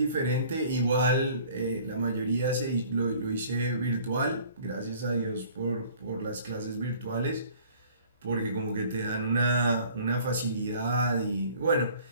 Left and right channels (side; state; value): both; inverted; correlation -0.52